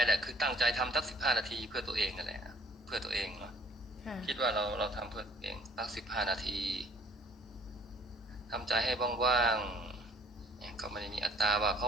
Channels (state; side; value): normal; both; correlation 0.56